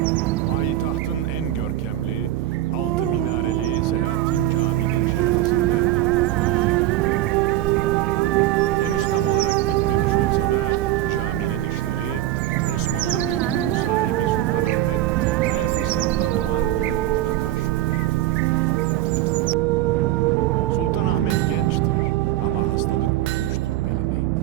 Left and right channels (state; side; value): quieter; left; 14.2 dB